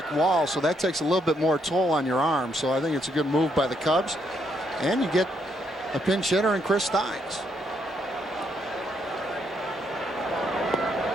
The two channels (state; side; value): normal; both; correlation 0.75